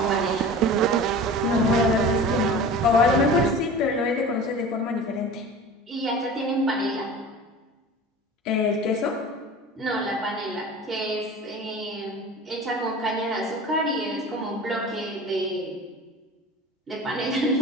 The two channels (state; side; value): normal; both; correlation 0.38